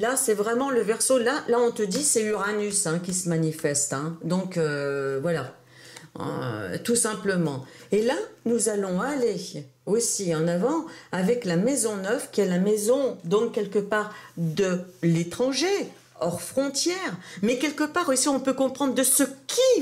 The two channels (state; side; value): identical; both; correlation 1.00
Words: c'est vraiment le Verseau. Là, on te dit, c'est Uranus hein, qui se manifeste. Hein. Donc, voilà. Tout simplement. Et là, nous allons aller aussi en avant avec la maison 9, qui est la maison, donc, quelque part, de l'étranger, hors frontières. Mais quelque part aussi, on peut comprendre de ce qui